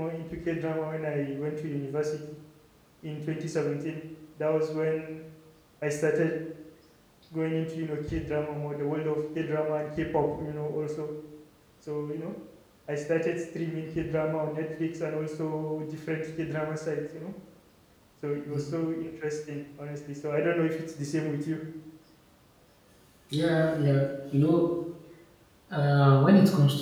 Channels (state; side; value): identical; both; correlation 1.00